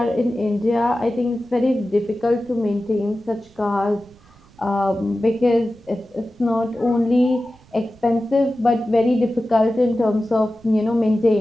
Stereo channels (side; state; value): right; noise; rumble, 28 dB below the sound